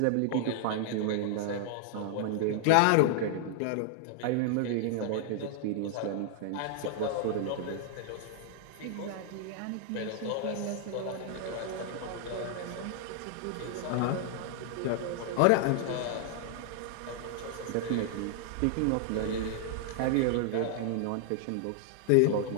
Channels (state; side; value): different; both; correlation 0.00